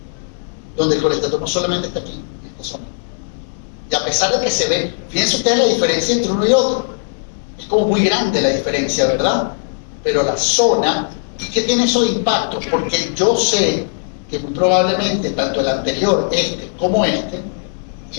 donde el colestatoma solamente está aquí, en esta zona. Y a pesar de que se ve, fíjense ustedes la diferencia entre uno y otro, es como muy grande la diferencia, ¿verdad? Pero la zona, ¿qué tiene eso de impacto? Porque yo sé que muy probablemente tanto el anterior, este, como este,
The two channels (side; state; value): right; silent; digital silence